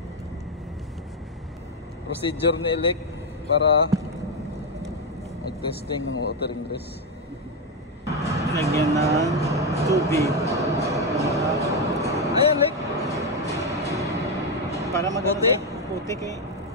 Procedure ni Elec para mag-testing ng water ingress. Lagyan ng tubig. Ayan, Elec. Para maganda putik eh.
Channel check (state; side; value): normal; both; correlation 0.06